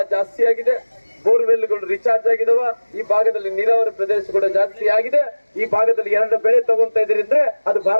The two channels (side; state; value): both; inverted; correlation -1.00